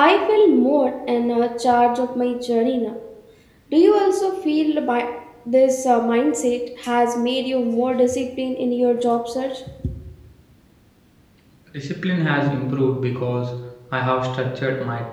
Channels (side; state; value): both; identical; correlation 1.00